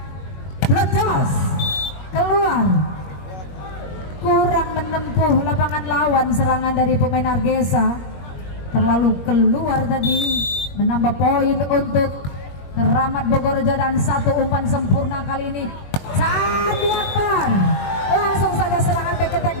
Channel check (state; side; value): late; right; 21 ms